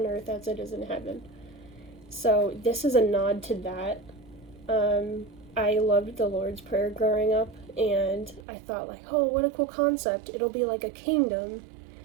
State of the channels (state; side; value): drops out; left; at 8.4 s